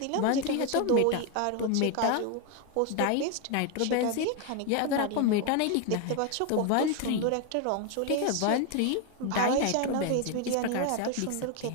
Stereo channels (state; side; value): different; both; correlation 0.01